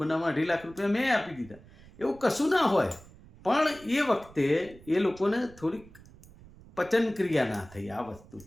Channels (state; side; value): noise; right; rumble, 22 dB below the sound